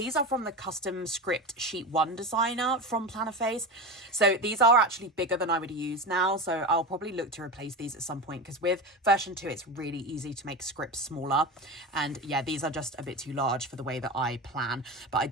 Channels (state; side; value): normal; both; correlation 0.24